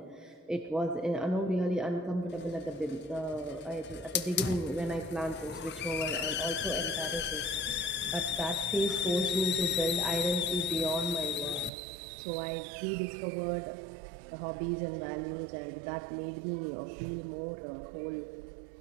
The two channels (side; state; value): left; drops out; at 11.7 s